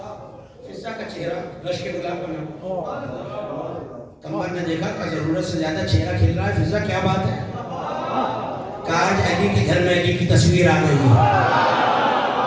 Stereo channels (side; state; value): both; identical; correlation 1.00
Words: فضا کا چہرہ رش کے گلاب کا نام. کمبر نے دیکھا کہ ضرورت سے زیادہ چہرہ کھل رہا ہے, فضا کیا بات ہے؟ آج علی کے گھر میں علی کی تصویر آ گئی ہے.